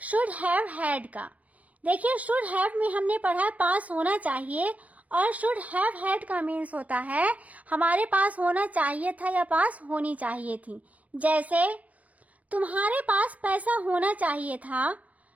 शुड हैव हैड का। देखिए शुड हैव में हमने पढ़ा है पास होना चाहिए, और शुड हैव हैड का मीन्स होता है हमारे पास होना चाहिए था या पास होनी चाहिए थी। जैसे तुम्हारे पास पैसा होना चाहिए था,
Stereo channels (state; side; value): late; left; 0.071 ms